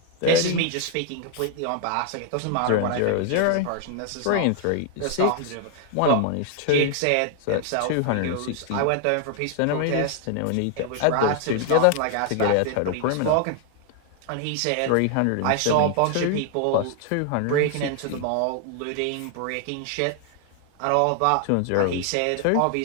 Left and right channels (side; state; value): both; different; correlation 0.00